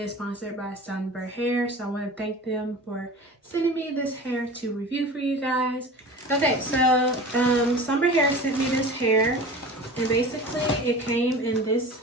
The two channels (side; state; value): both; normal; correlation 0.36